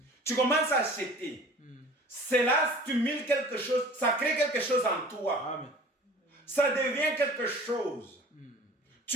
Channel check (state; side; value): normal; both; correlation 0.45